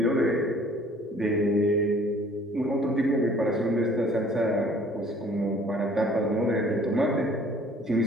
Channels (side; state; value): both; normal; correlation 0.54